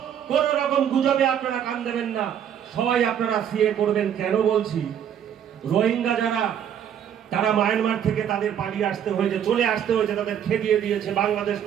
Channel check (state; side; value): quieter; left; 9.2 dB